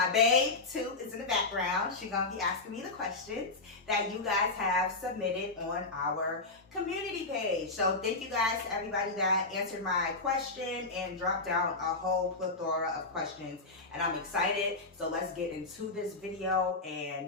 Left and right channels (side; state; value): right; quieter; 3.4 dB